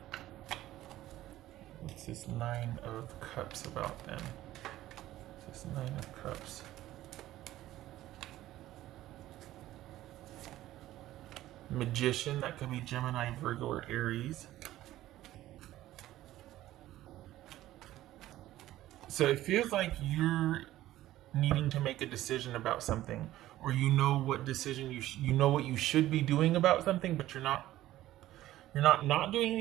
What's this 9 of Cups about then? What's this 9 of Cups? Magician, that could be Gemini, Virgo, or Aries. So it feels like you're needing to make a decision about something, or you know what decision you know what you should be doing about something, but you're not doing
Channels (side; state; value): left; quieter; 14.7 dB